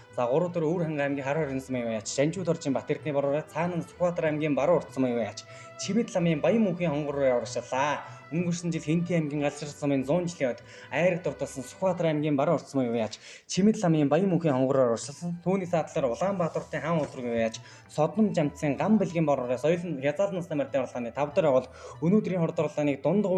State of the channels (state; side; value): identical; both; correlation 1.00